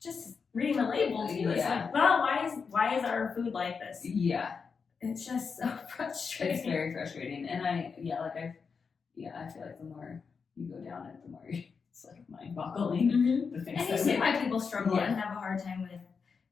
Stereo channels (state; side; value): quieter; right; 5.5 dB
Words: reading the label too. It's like, well, why is our food like this? Yeah. It's just so frustrating. It's very frustrating. And I feel like the more you go down it, the more it's like mind-boggling. The things and you see why people struggle and have a hard time with